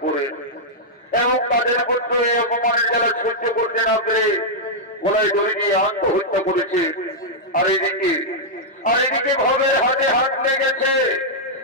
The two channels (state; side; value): normal; both; correlation -0.06